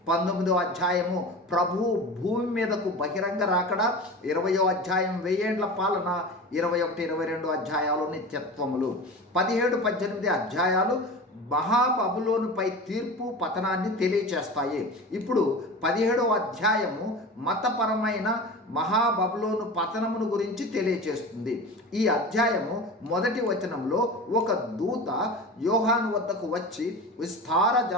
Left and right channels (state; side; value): normal; both; correlation 0.32